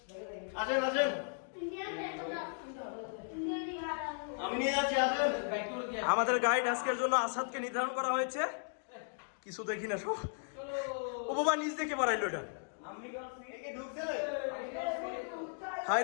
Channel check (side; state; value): right; silent; digital silence